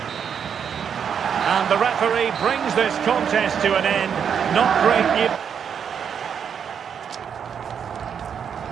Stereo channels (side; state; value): left; quieter; 7.6 dB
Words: And the referee brings this contest to an end. Not great news.